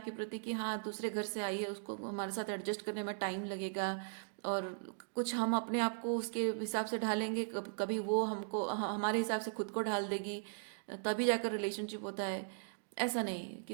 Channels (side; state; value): left; silent; digital silence